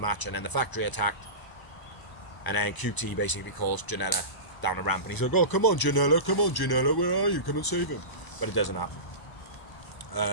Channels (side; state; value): right; late; 1.0 ms